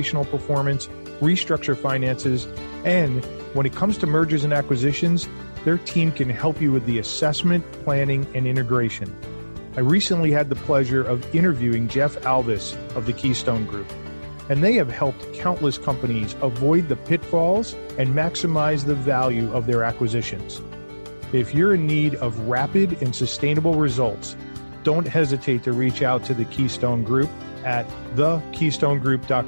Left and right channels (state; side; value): inverted; both; correlation -1.00